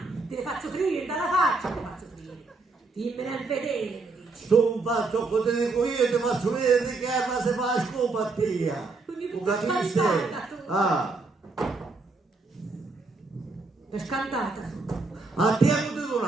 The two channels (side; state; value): left; quieter; 3.7 dB